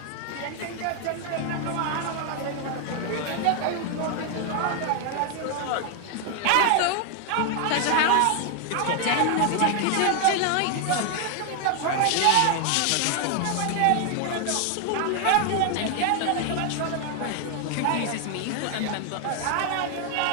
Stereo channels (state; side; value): different; both; correlation 0.00